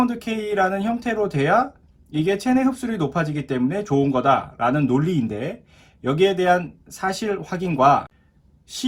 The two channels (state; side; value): identical; both; correlation 1.00